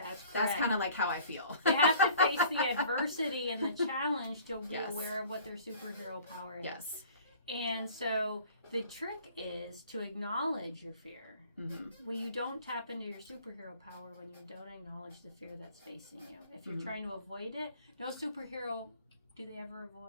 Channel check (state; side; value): inverted; both; correlation -0.50